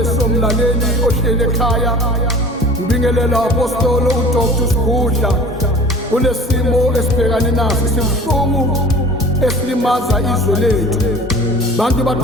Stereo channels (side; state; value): both; normal; correlation 0.43